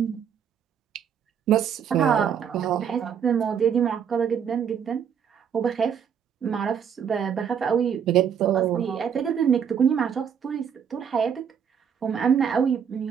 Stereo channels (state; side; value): quieter; left; 7.8 dB